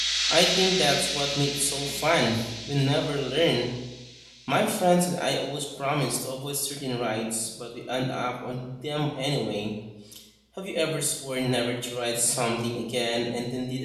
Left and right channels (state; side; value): identical; both; correlation 1.00